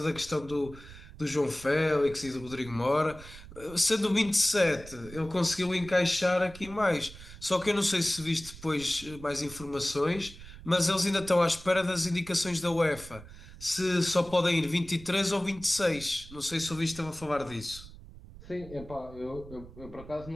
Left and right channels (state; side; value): noise; right; rumble, 17 dB below the sound